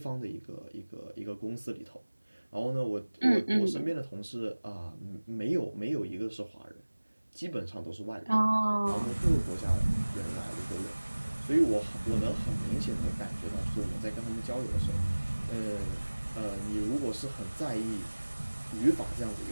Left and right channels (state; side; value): inverted; both; correlation -1.00